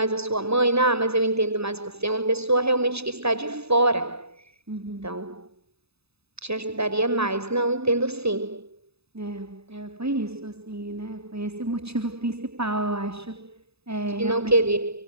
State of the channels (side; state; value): left; late; 0.79 ms